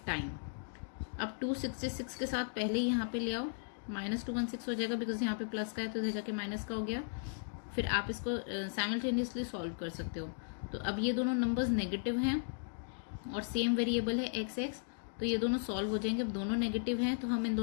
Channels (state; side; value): silent; right; digital silence